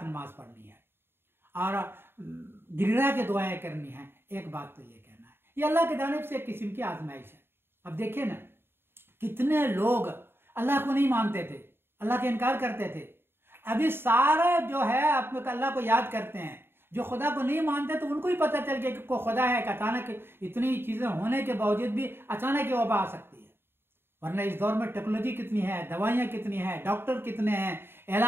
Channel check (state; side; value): late; left; 0.11 ms